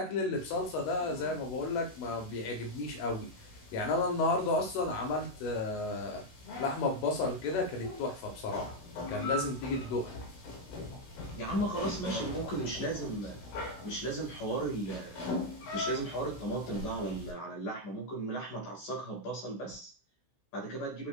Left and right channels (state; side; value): late; right; 16 ms